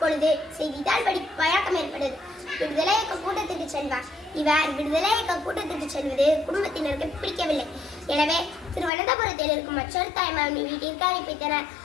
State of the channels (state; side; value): drops out; right; at 8.9 s